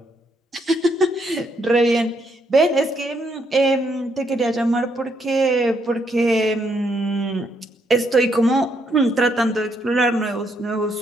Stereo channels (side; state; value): both; normal; correlation 0.74